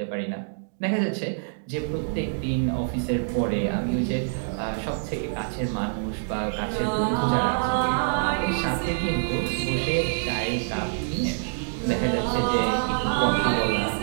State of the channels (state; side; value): silent; left; digital silence